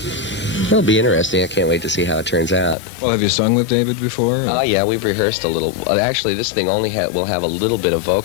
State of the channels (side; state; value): right; drops out; at 2.8 s